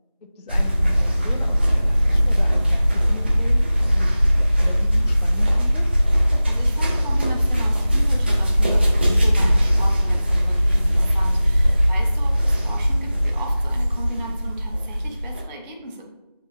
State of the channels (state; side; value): inverted; both; correlation -0.98